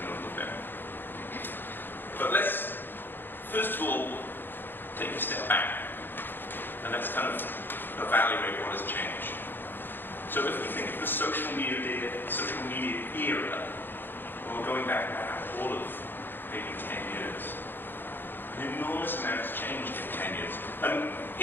a little bit. But let's, first of all, take a step back and let's kind of evaluate what has changed. So if we think of the social media era, well, we're going back now all of maybe 10 years. An enormous amount has changed in 10 years. And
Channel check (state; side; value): late; right; 0.097 ms